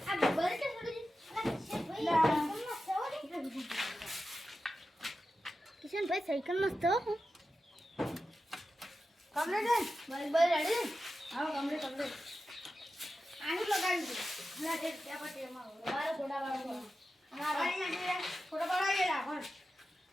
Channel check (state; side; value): normal; both; correlation 0.92